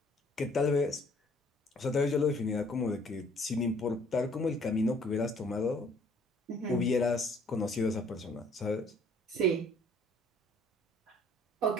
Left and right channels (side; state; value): both; normal; correlation 0.59